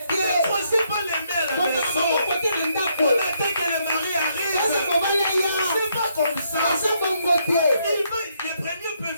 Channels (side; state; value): both; inverted; correlation -0.74